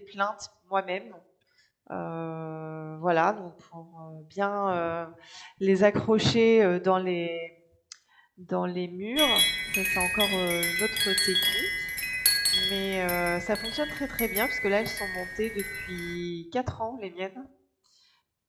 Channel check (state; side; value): identical; both; correlation 1.00